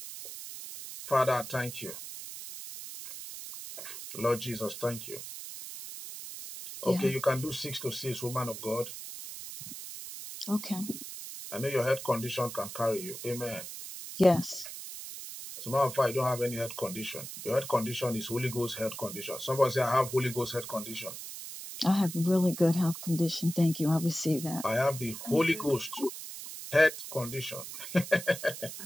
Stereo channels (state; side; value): noise; right; hiss, 10 dB below the sound